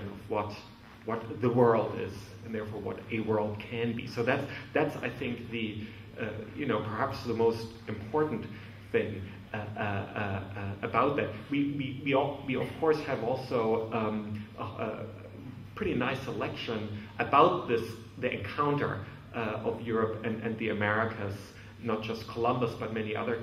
of what the world is, and therefore what a world can be. So that's I think the perhaps the most important thing about that. We of course have also a pretty nice selection about the encounter of Europe and the Americas. Not just Columbus, but many other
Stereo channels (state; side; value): identical; both; correlation 1.00